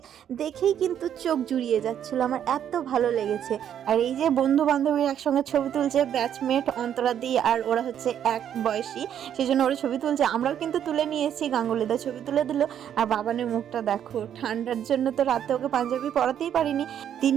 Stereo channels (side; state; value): left; quieter; 9.6 dB